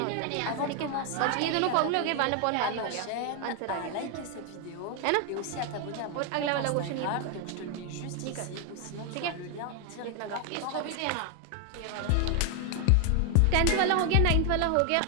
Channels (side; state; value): both; different; correlation 0.00